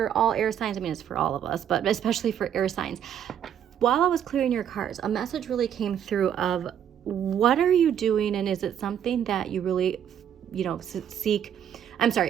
all air signs. I mean, it's for all of us, but especially for air signs. While I was clearing your cards, a message really came through of what are you doing, and is it something that you really seek?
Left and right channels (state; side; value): quieter; left; 9.4 dB